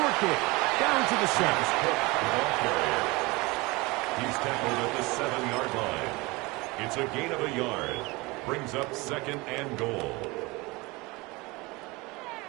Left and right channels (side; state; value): left; quieter; 23.8 dB